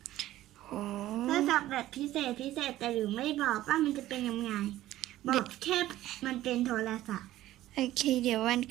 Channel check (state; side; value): quieter; left; 14.7 dB